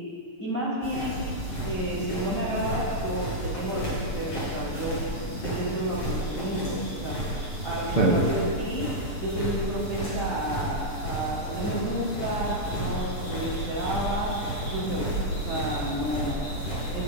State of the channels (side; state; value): right; late; 6.8 ms